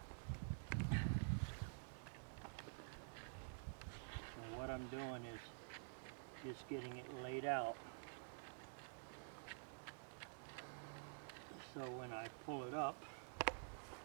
So what I'm doing is just getting it laid out. So when I pull it up,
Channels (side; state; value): left; silent; digital silence